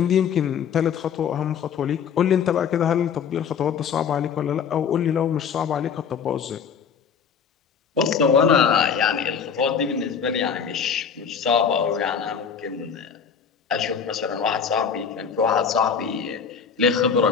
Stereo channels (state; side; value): quieter; right; 6.9 dB